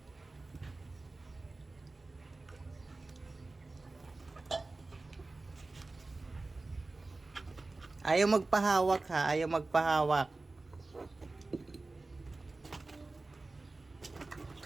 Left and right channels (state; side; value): quieter; left; 3.3 dB